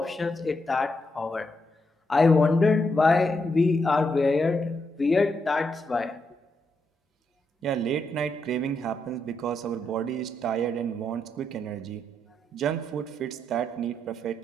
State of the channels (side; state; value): both; normal; correlation 0.81